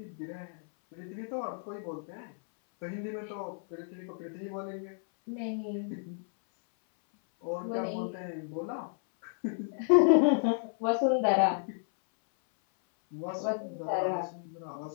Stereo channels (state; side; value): silent; right; 56 dB below the other